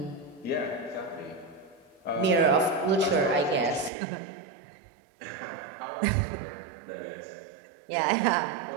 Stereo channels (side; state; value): left; drops out; at 3.9 s